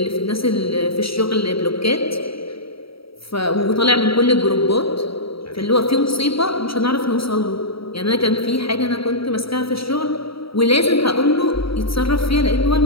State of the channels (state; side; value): late; right; 0.75 ms